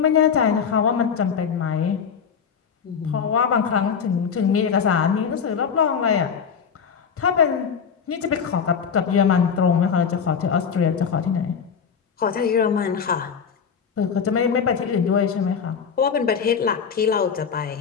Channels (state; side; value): quieter; right; 6.7 dB